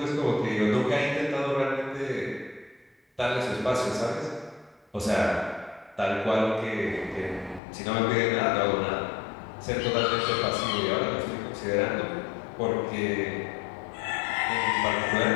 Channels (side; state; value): right; drops out; at 7.6 s